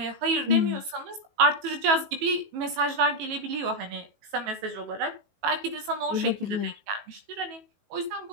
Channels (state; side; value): late; left; 19 ms